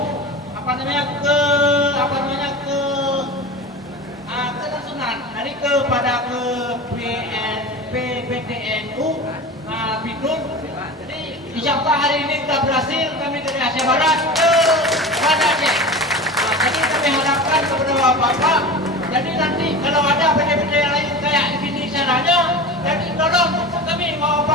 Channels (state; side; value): normal; both; correlation 0.31